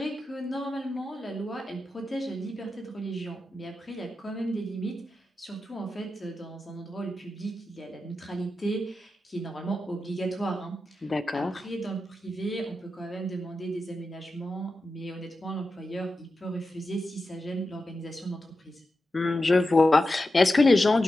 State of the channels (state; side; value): normal; both; correlation 0.90